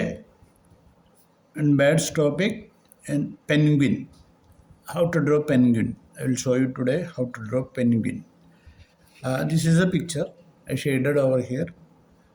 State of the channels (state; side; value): identical; both; correlation 1.00